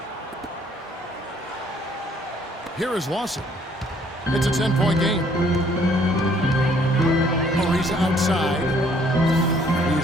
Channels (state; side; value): normal; both; correlation 0.62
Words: Here is Lawson. It's a 10-point game. Ariza outside.